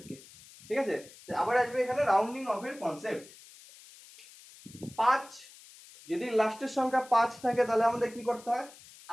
ঠিক আছে। তো আবার আসবে এখানে রাউন্ডিং অফ এর কনসেপ্ট। 5 যদি লাস্টের সংখ্যা 5 থাকে তাহলে আমাদের কি করতে হয়,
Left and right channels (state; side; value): noise; left; hiss, 21 dB below the sound